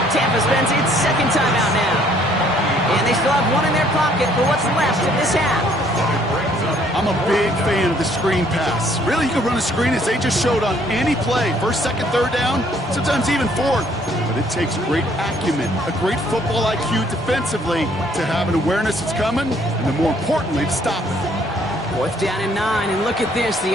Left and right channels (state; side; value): normal; both; correlation 0.63